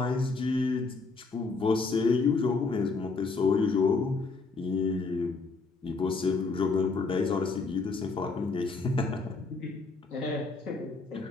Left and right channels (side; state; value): right; quieter; 4.1 dB